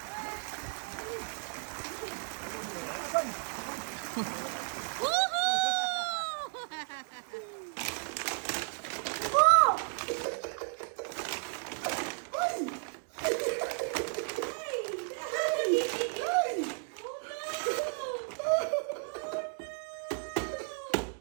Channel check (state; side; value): silent; left; 55 dB below the other